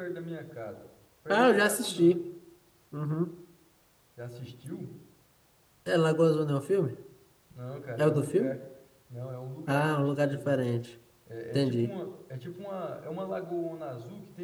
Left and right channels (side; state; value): both; identical; correlation 1.00